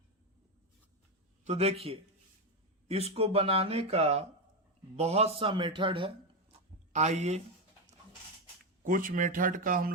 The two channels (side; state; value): both; normal; correlation 0.09